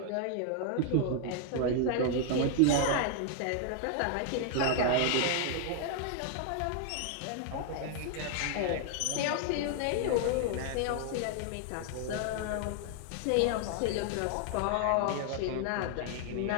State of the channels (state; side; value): different; both; correlation 0.00